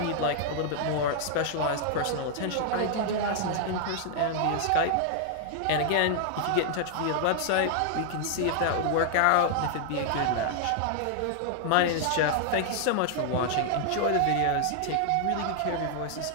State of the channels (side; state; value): both; different; correlation 0.00